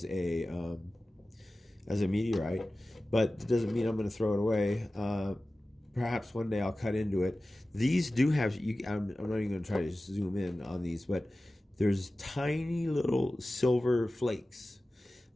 as a meteorite. But it doesn't mean I'm going to throw it away. Perhaps one day I'll cut into it. These do have. I'm not even going to try to zoom in on these, but there's tiny little silver flakes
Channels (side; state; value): both; normal; correlation 0.96